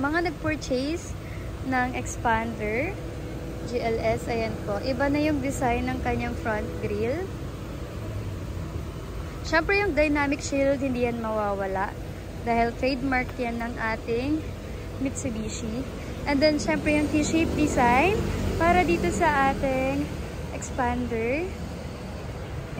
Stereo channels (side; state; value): both; identical; correlation 1.00